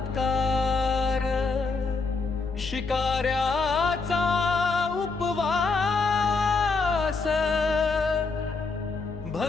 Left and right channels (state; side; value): quieter; right; 4.2 dB